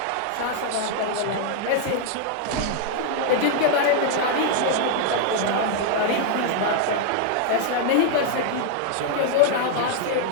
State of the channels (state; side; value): different; both; correlation 0.00